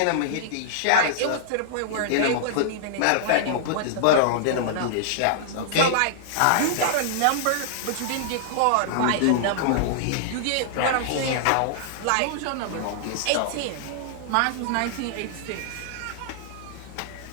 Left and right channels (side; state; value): both; different; correlation -0.01